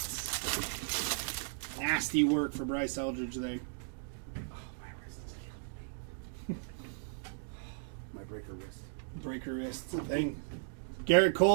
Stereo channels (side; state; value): left; silent; digital silence